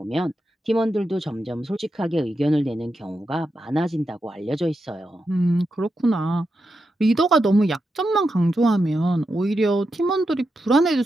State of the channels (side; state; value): both; normal; correlation 0.87